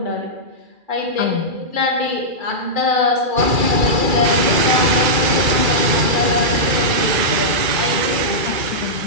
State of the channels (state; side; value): late; left; 2.3 ms